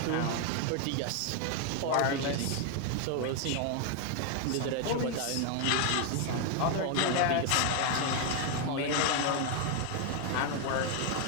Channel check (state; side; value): different; both; correlation 0.01